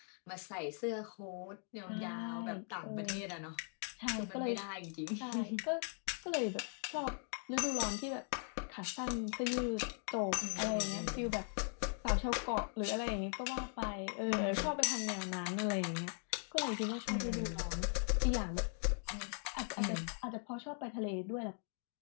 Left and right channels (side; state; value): right; silent; 51 dB below the other